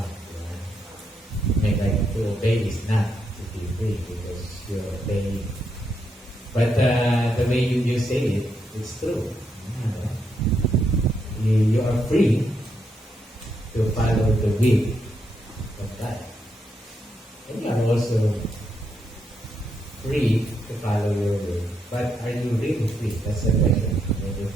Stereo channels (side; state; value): both; normal; correlation 0.80